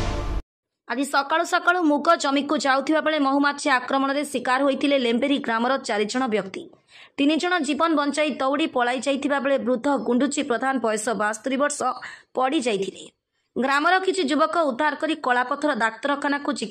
ଆଜି ସକାଳୁ ସକାଳୁ ମୁଗ ଜମିକୁ ଯାଉଥିବା ବେଳେ ମହୁମାଛି ଆକ୍ରମଣରେ ଶିକାର ହୋଇଥିଲେ ଲେମ୍ବେରୀ ଗ୍ରାମର 4 ଜଣ ବ୍ୟକ୍ତି। 3 ଜଣ ଜୀବନ ବଞ୍ଚାଇ ଦୌଡ଼ି ପଳାଇ ଯାଇଥିବା ବେଳେ ବୃଦ୍ଧ ଗୁଣ୍ଡୁଚି ପ୍ରଧାନ ବୟସ 72 ବର୍ଷ ପଡ଼ି ଯାଇଥିଲେ। ଗ୍ରାମର କିଛି ଯୁବକ ଉଦ୍ଧାର କରି କଳାପଥର ଡାକ୍ତରଖାନାକୁ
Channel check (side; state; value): both; identical; correlation 1.00